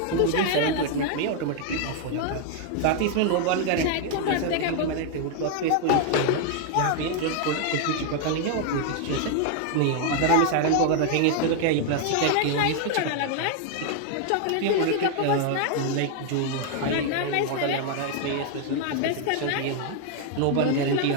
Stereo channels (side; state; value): both; different; correlation 0.00